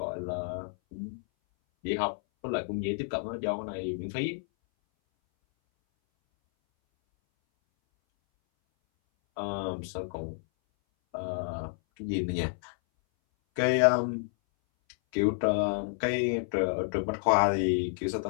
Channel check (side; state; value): right; silent; 58 dB below the other